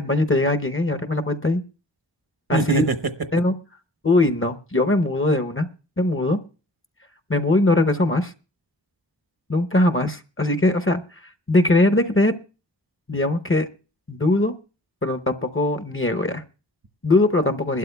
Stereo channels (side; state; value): both; normal; correlation 0.51